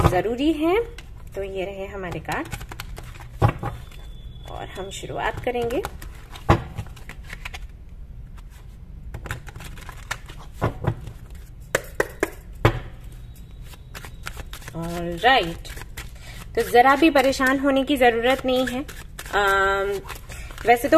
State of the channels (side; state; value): both; identical; correlation 1.00